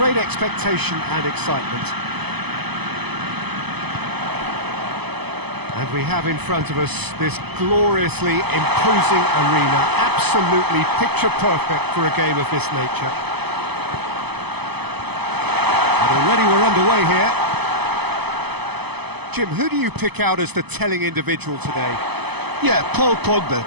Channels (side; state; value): left; late; 0.98 ms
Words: expectation and excitement. And we have in front of us this gloriously imposing arena, absolutely picture perfect for a game of this nature. And already we're underway here. Jim, who do you pick out as the telling individual today? Yeah, Paul Pogba.